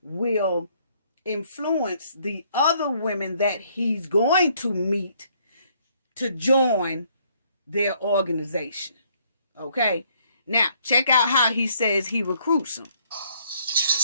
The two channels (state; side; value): inverted; both; correlation -0.66